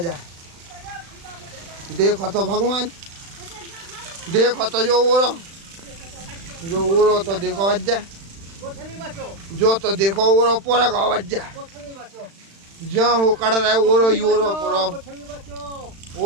देखो तो भगवान, देखो तो जो ओरो तो देखो बज्जा, जो तो देखो ओरो पूरा गाँव बज्जा जहाँ हो कड़ रहा है ओरो ही ओरो पूरा।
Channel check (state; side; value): late; left; 36 ms